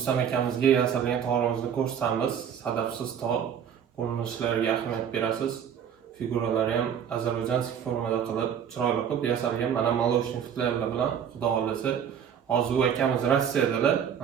akamizga yasalgan tog'imizni ko'rsatamiz. Sadafsiz tog' ko'rinishlariga ahamiyat berasiz. Figuralari ham ozarbayjonskiy formada qilib, chiroyli qilib yasalgan. Mana молочный futlarlar bilan xudo xolasa hozir akamiz Rossiyadalar.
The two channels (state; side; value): quieter; left; 8.4 dB